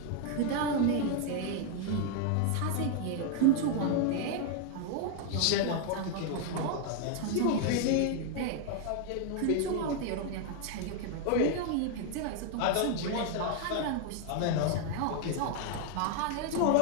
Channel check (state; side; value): different; both; correlation 0.00